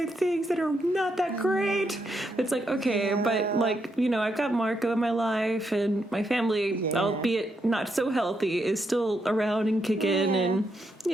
things that are not that great. It's okay, but I've got Marco in my life and my family, albeit not so healthy, is still around and kicking, and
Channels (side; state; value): both; normal; correlation 0.80